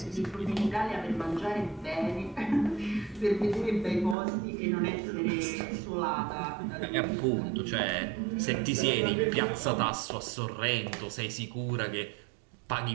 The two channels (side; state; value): left; drops out; at 4.2 s